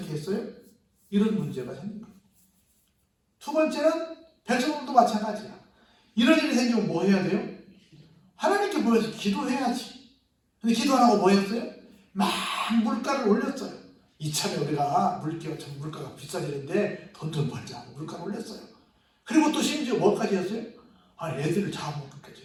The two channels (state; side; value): identical; both; correlation 1.00